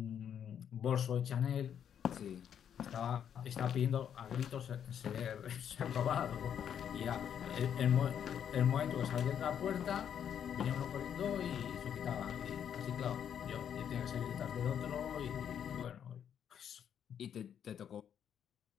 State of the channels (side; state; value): right; quieter; 8.8 dB